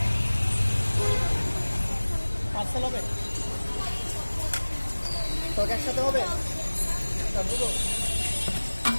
পার্সেল হবে তোকে একসাথে হবে?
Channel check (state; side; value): inverted; both; correlation -1.00